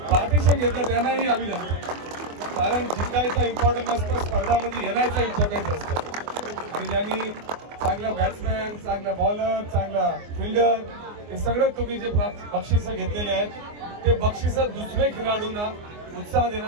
पार्टिशन घेतलं त्यांनाही अभिनंदन. कारण जिंकायचं इम्पॉर्टंट नसतं, स्पर्धामध्ये येण्याचं इम्पॉर्टंट असतं आणि ज्यांनी चांगला बॅट्समॅन, चांगला बॉलर, चांगला फिल्डर हे सगळं तुम्ही जे बक्षिसं घेतलेले आहेत ते बक्षिसं दुसरे खेळाडूंना उत्साह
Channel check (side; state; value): left; late; 24 ms